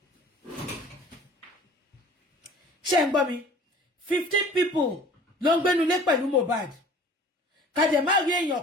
Ṣé ń gbọ́ mi? 15 people ló ń gbénu lé pẹ̀lú Mohbad. Ká dẹ̀ má rí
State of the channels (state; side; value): normal; both; correlation 0.47